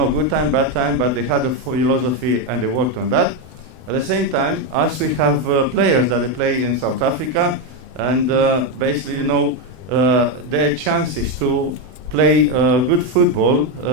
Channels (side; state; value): left; late; 32 ms